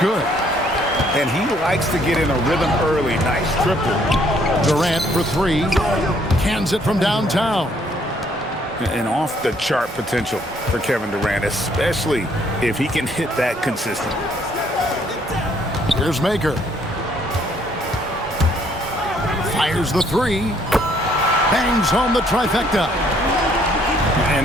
And he likes to get in a rhythm early. Nice triple. Durant for three. Cans it from downtown. And off-the-chart potential for Kevin Durant, especially if he can hit that consistently. Here's Maker. Fires the three. Bangs home the trifecta.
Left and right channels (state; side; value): normal; both; correlation 0.66